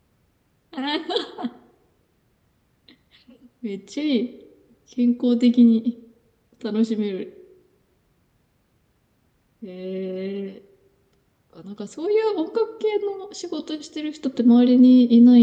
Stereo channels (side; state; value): both; identical; correlation 1.00